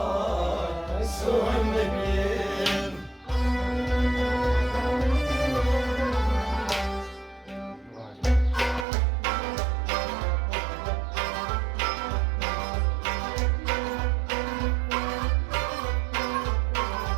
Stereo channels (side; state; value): left; drops out; at 8.8 s